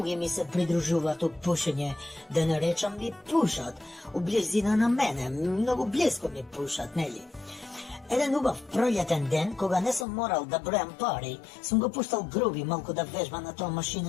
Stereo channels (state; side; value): drops out; right; at 10.1 s